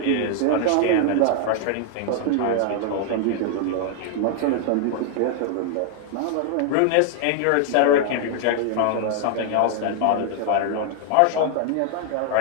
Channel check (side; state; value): both; different; correlation 0.00